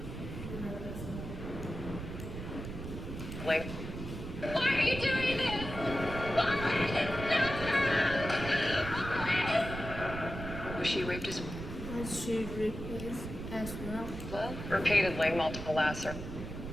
Like, Why are you doing this? Wallace, no! Wallace! was she raped as Was she replaced as well? well? Repeatedly, multiple lacerations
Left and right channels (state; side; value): noise; right; rumble, 8 dB below the sound